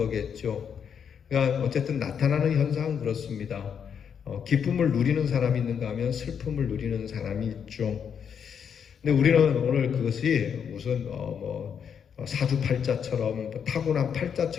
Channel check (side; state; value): right; quieter; 7.5 dB